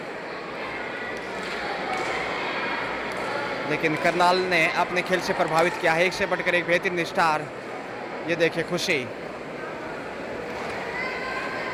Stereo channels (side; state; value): both; identical; correlation 1.00